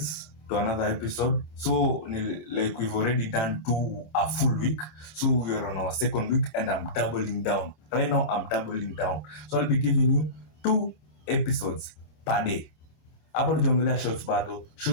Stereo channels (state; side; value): late; right; 27 ms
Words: to another episode. So, like we've already done a full week, so we are on our second week, and I'm doubling down. Right now, I'm doubling down. So I'll be giving you 2 episodes per day. Hapo tujiongelea shorts bado.